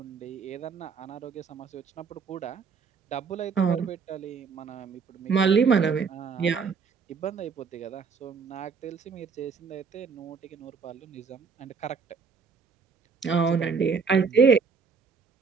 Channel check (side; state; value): left; quieter; 5.5 dB